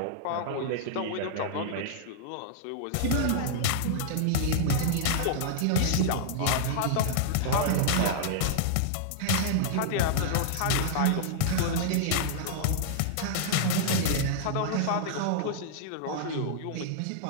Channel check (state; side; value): different; both; correlation -0.01